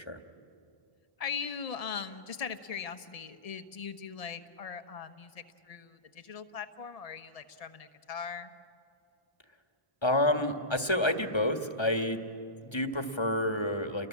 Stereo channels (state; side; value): late; right; 1.3 ms